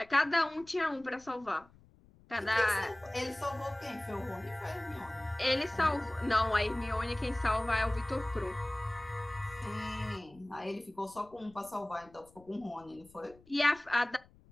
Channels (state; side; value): noise; left; rumble, 26 dB below the sound